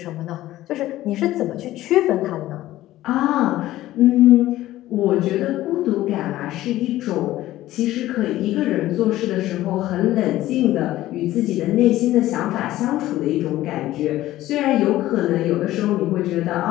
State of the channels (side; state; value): right; quieter; 15.2 dB